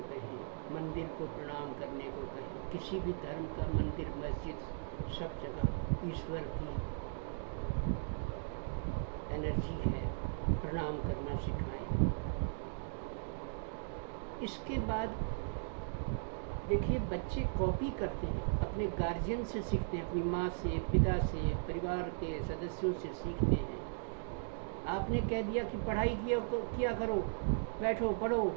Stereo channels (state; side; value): silent; left; digital silence